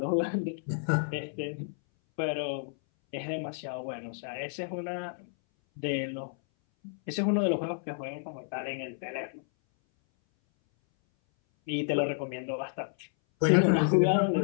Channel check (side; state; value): right; silent; 57 dB below the other